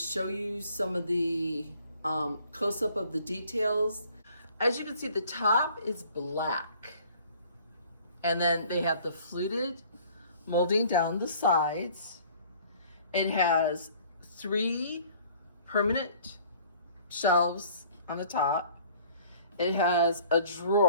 you some of the close-up of the details. As you can see, the top is black. And then they have the fluted molding down the sides. It has 3 permanent shelves on the top. It has a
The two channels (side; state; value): both; inverted; correlation -0.54